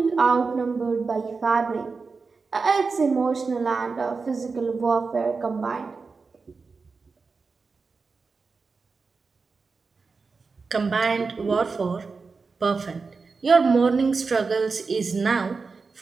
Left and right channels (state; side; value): quieter; left; 4.5 dB